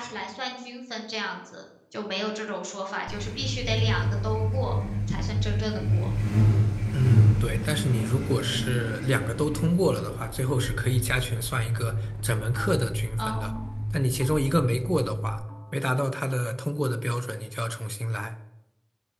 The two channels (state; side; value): identical; both; correlation 1.00